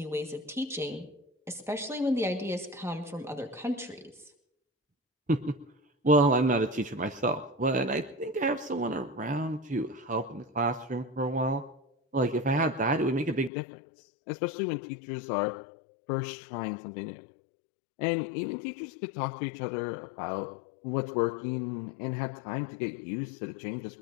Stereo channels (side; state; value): right; drops out; at 13.5 s